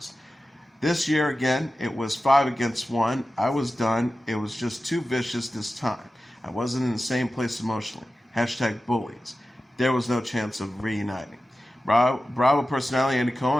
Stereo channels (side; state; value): both; normal; correlation 0.94